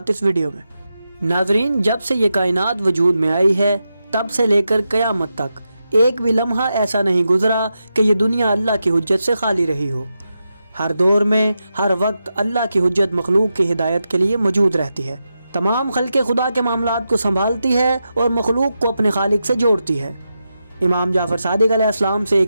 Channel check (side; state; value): both; inverted; correlation -0.88